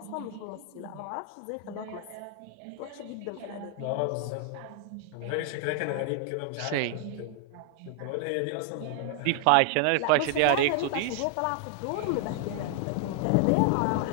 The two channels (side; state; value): both; different; correlation 0.00